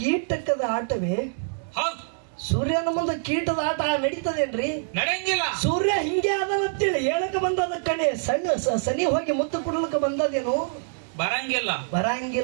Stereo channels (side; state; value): left; silent; 62 dB below the other